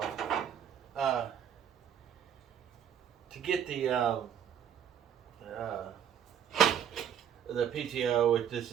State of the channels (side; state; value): left; quieter; 8.8 dB